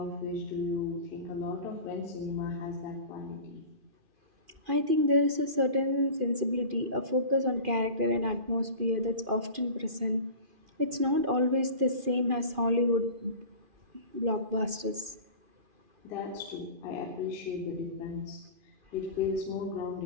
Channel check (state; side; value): late; left; 2.4 ms